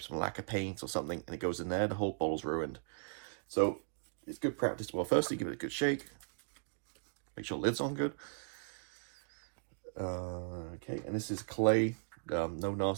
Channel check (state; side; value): silent; left; digital silence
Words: some lacquer paint or something, and it goes in there, the whole bottle's ruined. So it's good practice. Well, firstly, give it a good shake. Make sure the lid's on good. Okay, and this is clay. No